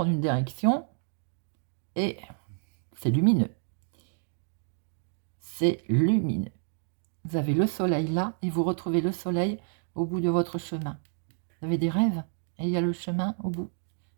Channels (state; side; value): silent; left; digital silence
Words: une direction et c'est lumineux. C'est lumineux. Vous avez le soleil là et vous retrouvez le soleil au bout de votre chemin. Vous avez des rêves et il y a le chemin au bout,